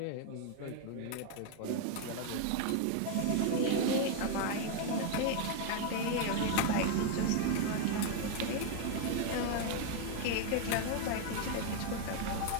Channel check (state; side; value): different; both; correlation 0.01